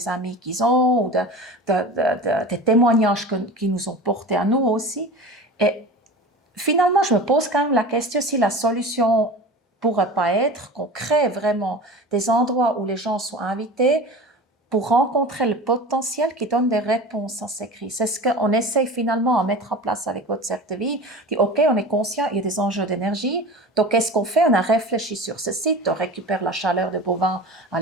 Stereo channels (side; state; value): both; normal; correlation 0.34